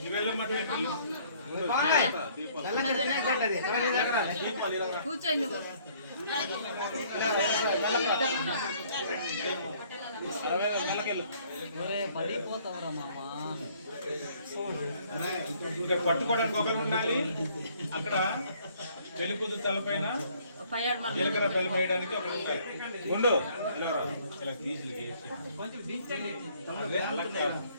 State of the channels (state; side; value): inverted; both; correlation -0.61